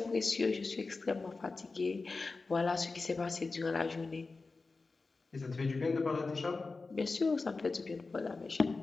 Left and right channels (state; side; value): quieter; right; 3.9 dB